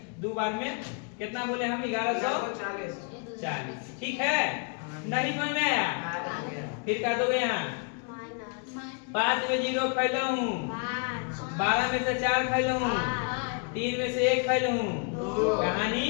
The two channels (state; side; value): quieter; right; 39.1 dB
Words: 2 बार में कितना बोले हम, 1140, ठीक है। नहीं समझ में आया, फिर का दोगे यहाँ 5 में 0 खैला हूँ, 12 में से 4 खैला हूँ, 3 में से 1 खैला हूँ, कहानी